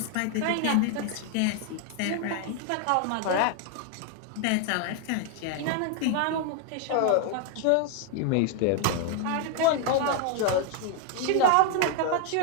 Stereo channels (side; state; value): both; different; correlation 0.00